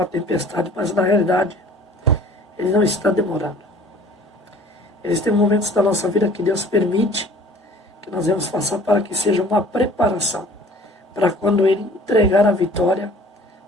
tempestade, mas na realidade Ele não está demorando. Existem momentos da nossa vida que Deus permite que nós vamos passar para que seja uma preparação, para quando Ele entregar a vitória,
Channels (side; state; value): both; normal; correlation 0.50